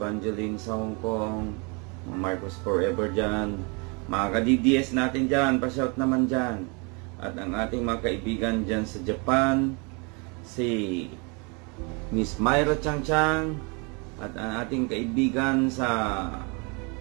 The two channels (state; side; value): quieter; left; 31.9 dB